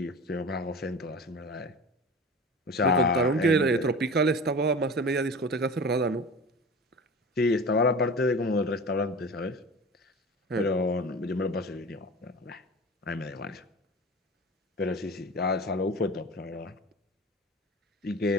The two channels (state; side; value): normal; both; correlation 0.35